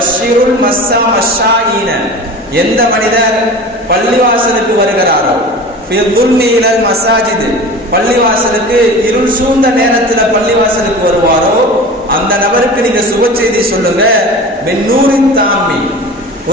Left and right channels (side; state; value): both; normal; correlation 0.35